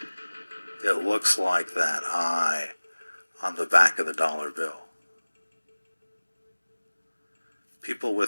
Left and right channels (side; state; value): both; inverted; correlation -1.00